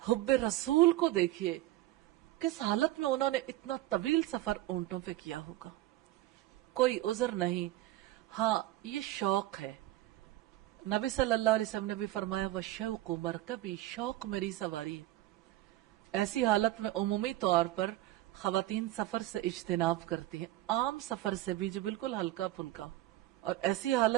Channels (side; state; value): left; quieter; 15.8 dB